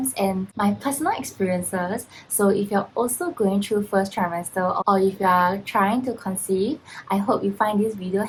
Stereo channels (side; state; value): both; identical; correlation 1.00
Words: and my personal experiences. So if you're also going through first trimester or if you are trying to conceive, I hope you find this video